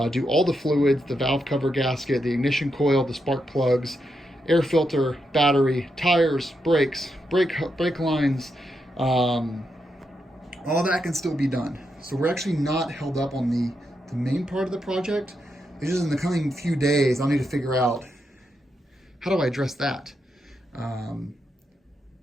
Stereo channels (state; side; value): normal; both; correlation 0.83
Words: do all the fluids, the valve cover gasket, the ignition coil, the spark plugs, air filter, battery, tires, brakes, brake lines, all that can still be done. So we're actually not held up on the main part of the project. It's just in the coming few days, I'll need to figure out how do I address that. And